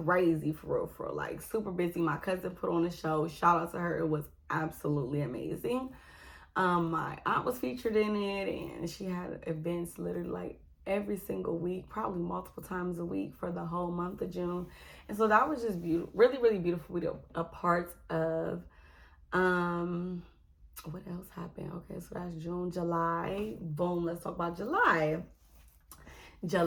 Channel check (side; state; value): both; identical; correlation 1.00